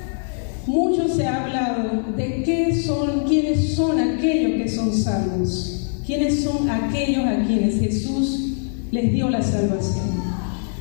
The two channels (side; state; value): right; silent; digital silence